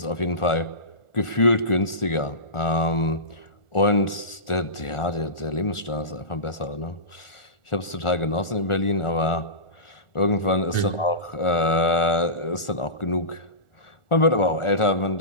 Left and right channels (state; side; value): late; right; 1.4 ms